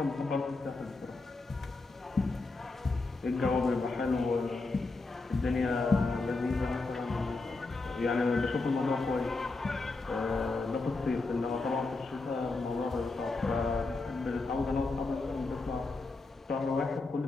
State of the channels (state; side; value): quieter; right; 3.5 dB